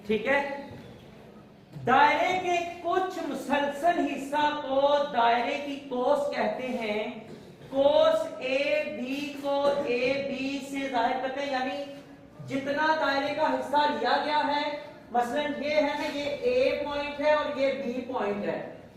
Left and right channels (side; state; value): both; identical; correlation 1.00